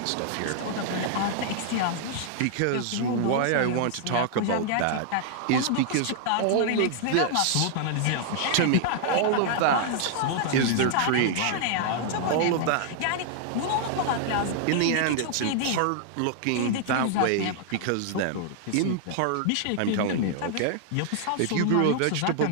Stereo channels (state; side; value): different; both; correlation -0.01